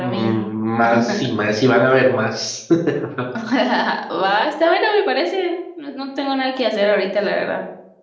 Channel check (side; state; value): both; identical; correlation 1.00